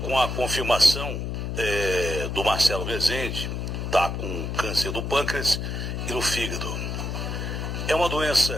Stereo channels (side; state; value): left; noise; hum, 3 dB below the sound